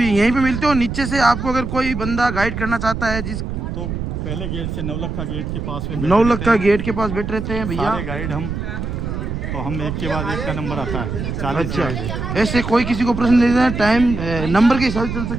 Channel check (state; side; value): noise; right; rumble, 4 dB below the sound